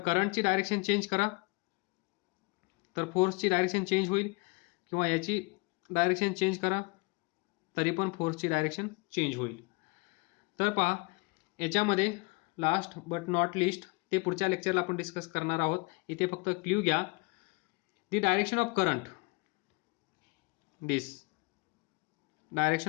डायरेक्शन चेंज करा तर फोर्सची डायरेक्शन चेंज होईल, किंवा याची डायरेक्शन चेंज करा तरी पण फोर्सची डायरेक्शन चेंज होईल. तर पहा, याच्यामध्ये लास्ट बट नॉट लिस्ट ते पुढच्या लेक्चरला आपण डिस्कस करणार आहोत. इथे फक्त क्ल्यू घ्या. The direction of current, this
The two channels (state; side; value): quieter; right; 27.7 dB